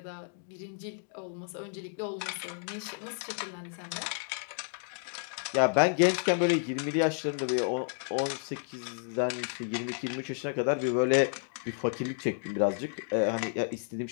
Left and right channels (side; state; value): right; silent; 57 dB below the other